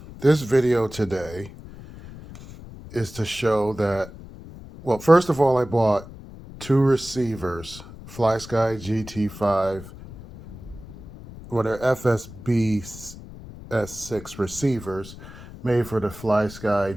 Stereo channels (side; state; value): left; noise; rumble, 15 dB below the sound